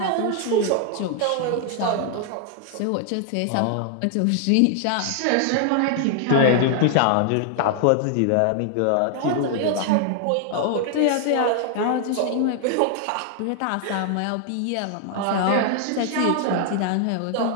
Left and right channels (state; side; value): different; both; correlation 0.00